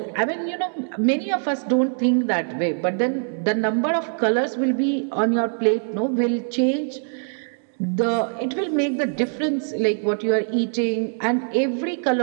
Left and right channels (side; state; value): left; silent; 63 dB below the other